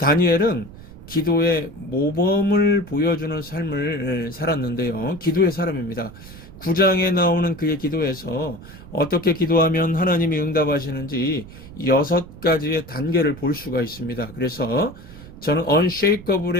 기도의 모범을 보여주는 삶을 살았는데요. 기도의 사람입니다. 9장에 나오는 그의 기도에서 어떻게 기도하면 하나님이 응답하시는지 6가지의 단계를 볼 수가 있습니다. 그래서 저는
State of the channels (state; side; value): noise; right; rumble, 17 dB below the sound